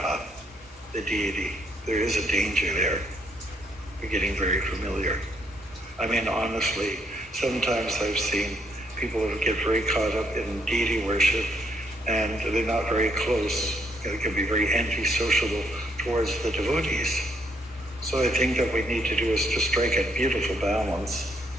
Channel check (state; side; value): normal; both; correlation 0.71